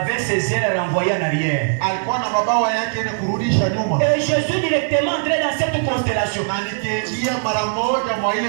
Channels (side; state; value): left; silent; digital silence